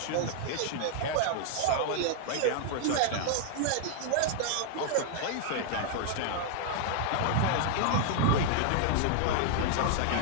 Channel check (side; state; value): both; different; correlation 0.00